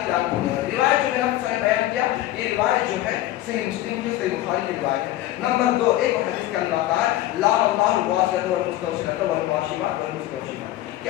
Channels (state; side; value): quieter; right; 14.8 dB